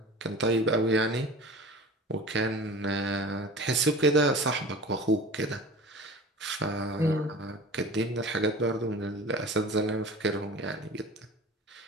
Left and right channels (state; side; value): normal; both; correlation 0.38